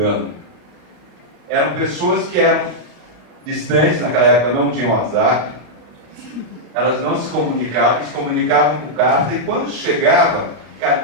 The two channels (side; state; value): left; late; 34 ms